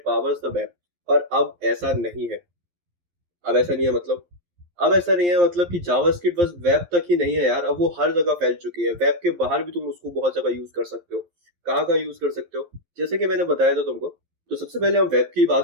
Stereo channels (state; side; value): late; left; 11 ms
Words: powers the web. और अब ऐसा नहीं है। अब ऐसा नहीं है मतलब अब ऐसा नहीं है मतलब कि जावास्क्रिप्ट बस वेब तक ही नहीं है यार। अब वो हर जगह फैल चुकी है। वेब के बाहर भी तुम उसको बहुत जगह यूज कर सकते हो। कहाँ कहाँ यूज कर सकते हो जैसे कि मैंने बताया था तुमको। तो सबसे पहले हम वेब की